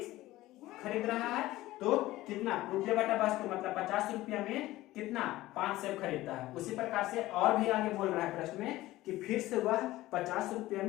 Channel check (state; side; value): quieter; right; 16.9 dB